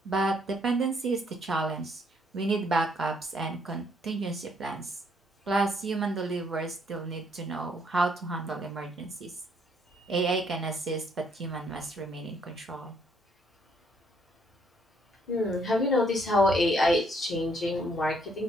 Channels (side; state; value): both; normal; correlation 0.68